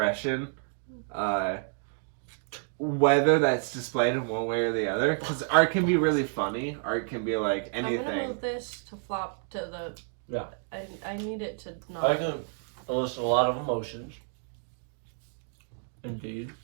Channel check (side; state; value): left; silent; 58 dB below the other